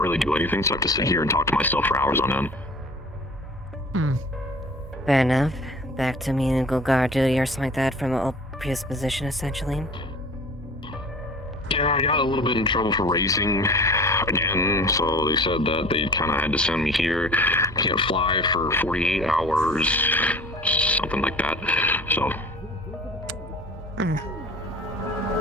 do anything, so I have to sit here and talk to myself for hours on end. Fair enough. back to menial guard duty or something like that from a previous position, essentially. Yeah, I got a little bit in trouble for racing again, so they said that they kind of had to send me here. Can't fly for 48 hours, something like that. So.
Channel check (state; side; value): normal; both; correlation 0.43